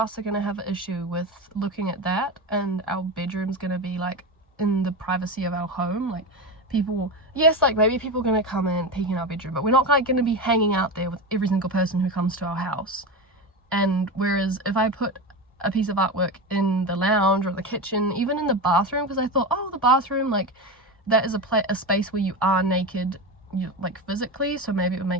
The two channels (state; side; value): normal; both; correlation 0.21